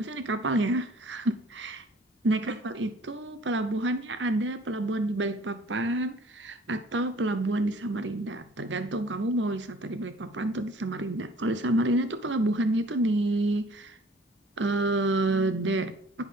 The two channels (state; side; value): normal; both; correlation 0.53